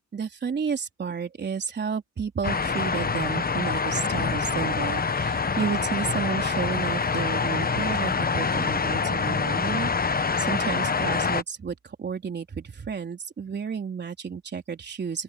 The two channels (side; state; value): both; normal; correlation 0.10